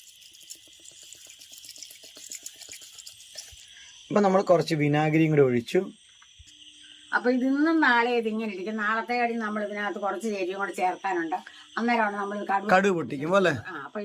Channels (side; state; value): both; identical; correlation 1.00